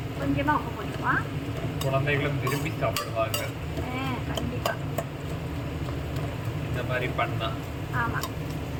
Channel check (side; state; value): both; identical; correlation 1.00